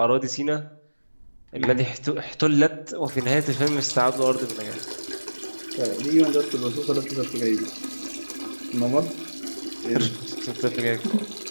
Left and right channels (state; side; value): inverted; both; correlation -1.00